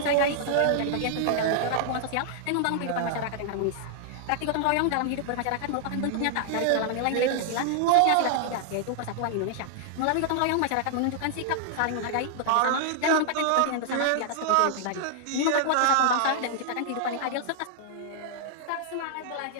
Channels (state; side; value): different; both; correlation -0.01